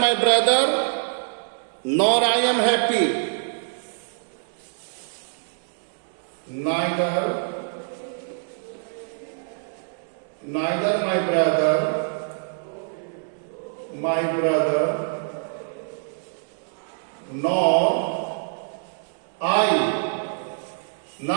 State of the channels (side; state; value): left; silent; 62 dB below the other